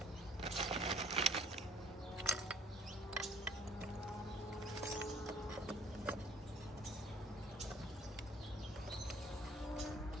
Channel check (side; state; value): both; normal; correlation 0.54